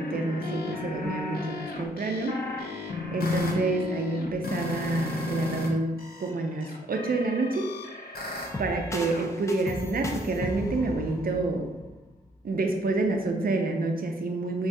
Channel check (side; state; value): both; normal; correlation 0.65